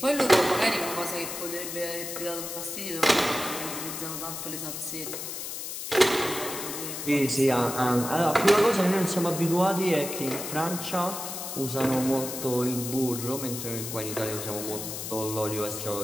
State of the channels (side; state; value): left; noise; hiss, 6 dB below the sound